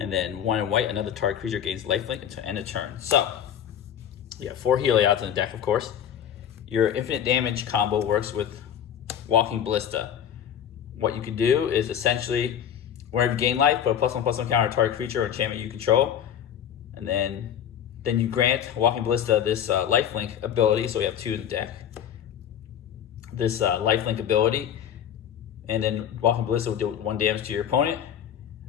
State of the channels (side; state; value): right; quieter; 9.4 dB